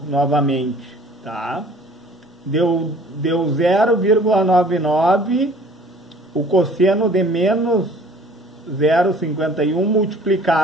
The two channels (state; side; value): normal; both; correlation 0.51